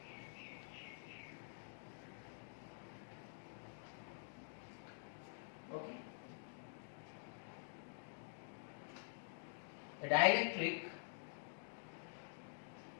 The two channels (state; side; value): silent; right; digital silence